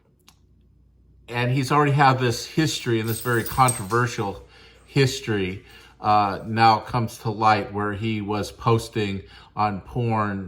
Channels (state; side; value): identical; both; correlation 1.00